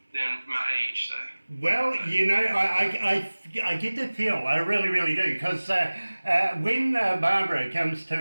than my age. So. Well, I get the feel. I really, really do, because when Barbara comes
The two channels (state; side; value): inverted; both; correlation -1.00